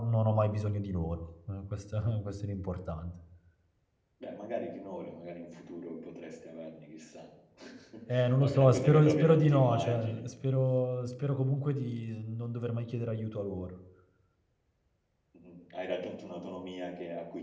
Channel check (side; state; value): both; identical; correlation 1.00